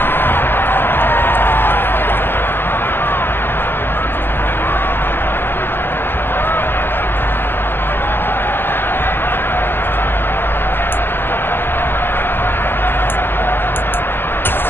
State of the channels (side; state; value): right; late; 0.099 ms